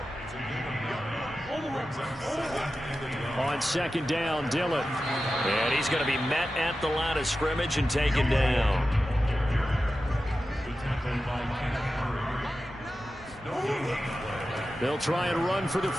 On second down, Dillon. And he's going to be met at the line of scrimmage and taken down. They'll try and run for the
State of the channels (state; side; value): normal; both; correlation 0.93